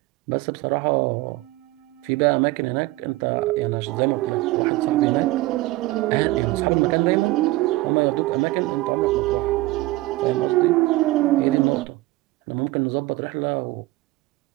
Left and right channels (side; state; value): left; quieter; 19.3 dB